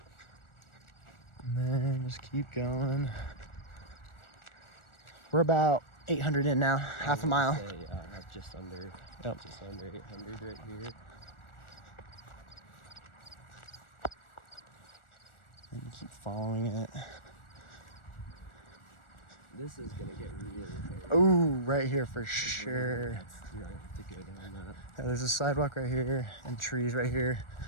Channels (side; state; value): right; late; 1.4 ms